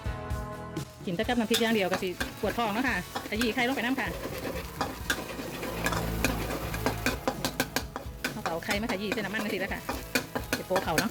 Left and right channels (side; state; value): both; identical; correlation 1.00